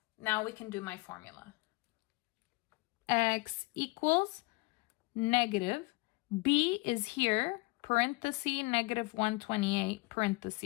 now we can do my formula. X equals negative. B is here, parenthesis, negative 128,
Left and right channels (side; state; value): right; quieter; 24.0 dB